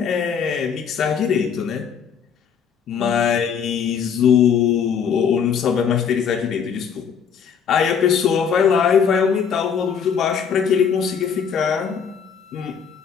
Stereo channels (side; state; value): right; quieter; 7.1 dB